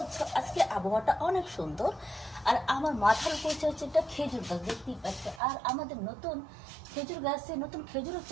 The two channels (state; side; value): drops out; left; at 5.4 s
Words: আজকে আবহাওয়াটা অনেক সুন্দর। আর আমার মাথার উপর হচ্ছে একটা খেজুর গাছ, দেখতেই পাচ্ছে। আর আমাদের নতুন খেজুর গাছে নতুন খেজুরও